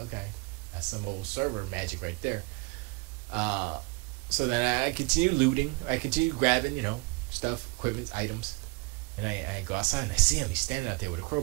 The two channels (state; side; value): quieter; left; 26.0 dB